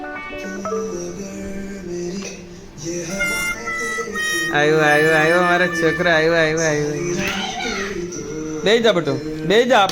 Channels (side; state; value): both; identical; correlation 1.00